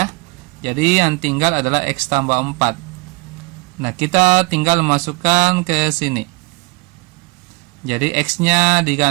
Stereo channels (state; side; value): quieter; left; 26.0 dB